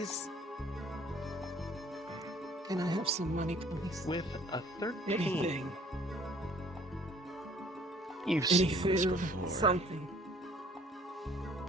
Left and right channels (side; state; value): both; normal; correlation 0.56